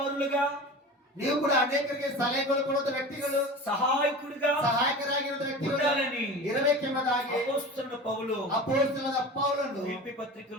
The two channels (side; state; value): both; normal; correlation 0.34